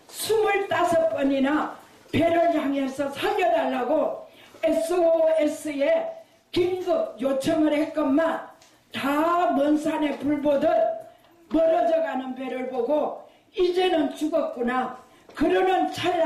25번이나 배를 향해서 살려달라고 SOS에 긴급 요청을 했건만 다 먼 산에 불 보듯 멀어져가는 배를 보고 이제는 죽었구나. 그러는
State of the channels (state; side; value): identical; both; correlation 1.00